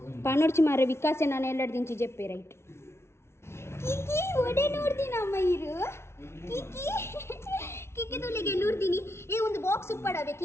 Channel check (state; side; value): late; right; 0.13 ms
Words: ಪನೋಡ್ಚಿ ಮಾರ ವಿಕಾಸೆ ನಾನು ಎಲ್ಲರ ದಿಂಚಿ ಜೆಪ್ಪೆ ರೈಟ್ ಕಿಕ್ಕಿ ಒಡೆ ನೋಡ್ತೀನಮ್ಮ ಇರು ಕಿಕ್ಕಿ ಕಿಕ್ಕಿ ತುಳಿಗೆ ನೋಡ್ತೀನಿ ಏ ಒಂದು ಬಾಕ್ಸ್ ಉಪ್ಪಡವೆ